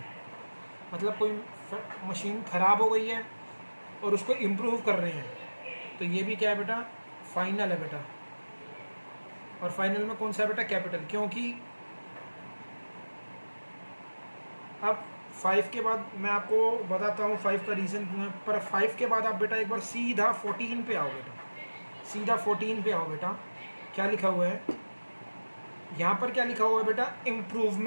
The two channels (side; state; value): both; inverted; correlation -1.00